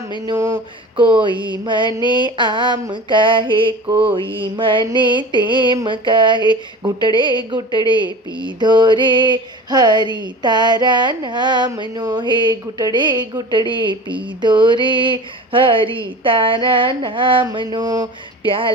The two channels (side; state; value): both; normal; correlation 0.36